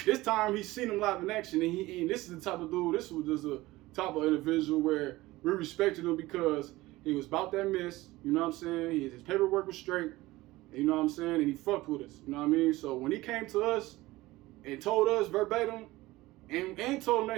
This time he seen him live in action, and this is the type of dude, this was just a type of individual where we respected him because he was about that miss, you know what I'm saying? His paperwork was straight, you know what I'm saying? And he fucked with us, you know what I mean? So when he came to us and told us verbatim, and told him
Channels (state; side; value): quieter; left; 18.8 dB